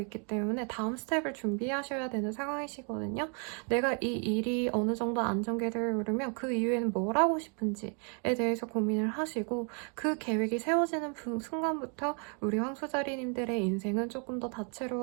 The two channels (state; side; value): quieter; left; 38.7 dB